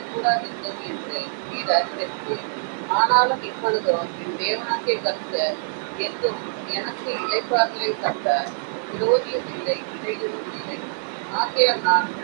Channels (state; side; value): silent; left; digital silence